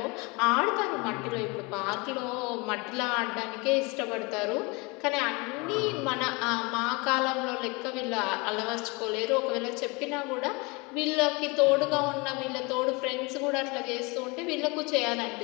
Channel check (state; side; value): quieter; right; 27.4 dB